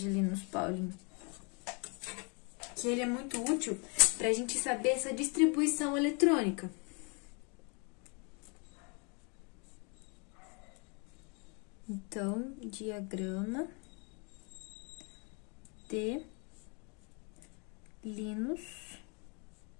Linus Pauling. Que ele é muito útil pra gente saber essa distribuição eletrônica. Então, diagrama de Linus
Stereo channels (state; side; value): quieter; right; 34.4 dB